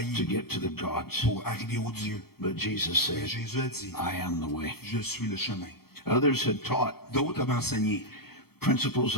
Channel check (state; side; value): late; right; 0.95 ms